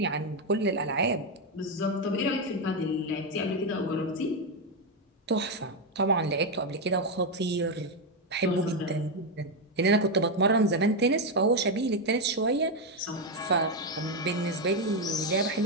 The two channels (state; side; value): normal; both; correlation 0.05